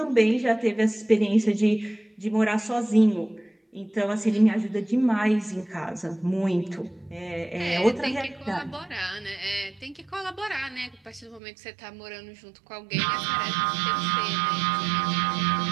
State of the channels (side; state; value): left; drops out; at 11.4 s